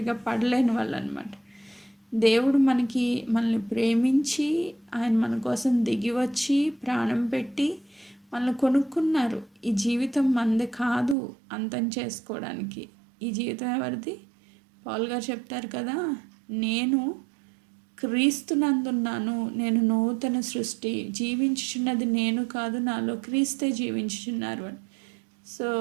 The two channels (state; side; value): drops out; left; at 11.2 s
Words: పడలేని వాళ్ళు అనమాట. దేవుడు మనల్ని ప్రేమించి ఆయన మన కోసం దిగి వచ్చి ప్రాణం పెట్టి మనల్ని కొనుక్కున్నారు. ఈ జీవితం మనది కాదు అంతం చేసుకోవడానికి. ఈ జీవితం ఎవరిది? పౌలు గారు చెప్తారు కదా, నేను క్రీస్తునందున్నాను, నేను నూతన సృష్టి, జీవించుచున్నది నేను కాదు, నాలో క్రీస్తే జీవించుచున్నారు అని. సో